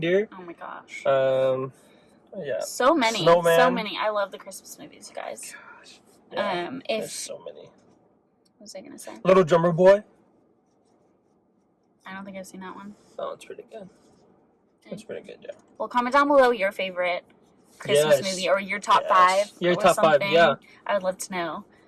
Oh my gosh. Yeah. So many. Snowman. So many. I love the Christmas movies, you guys. Gosh. Yeah. There's so many. What was I gonna say? Little Drummer Boy. I don't think I've seen that one. Oh, it's pretty good. It's pretty good, yeah. Well, comment down below your favorite Christmas movie or your top five. Your top five, yeah. I would love to know.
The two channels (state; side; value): identical; both; correlation 1.00